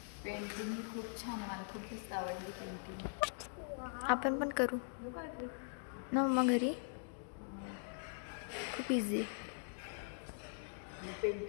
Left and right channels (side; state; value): right; silent; digital silence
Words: पेंटिंग खूप छान, मला खूप जास्त आवडली पेंटिंग. आपण पण करू ना मग घरी, खूप इझी.